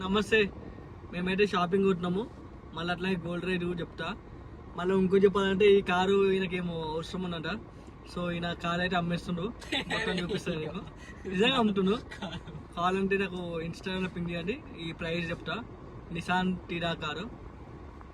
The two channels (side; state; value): both; identical; correlation 1.00